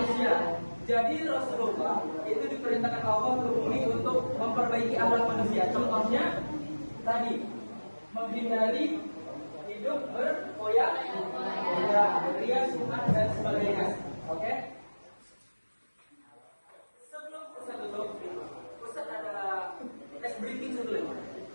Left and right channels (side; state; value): both; inverted; correlation -1.00